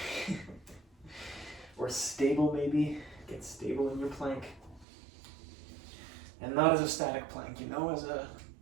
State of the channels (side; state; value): left; drops out; at 4.9 s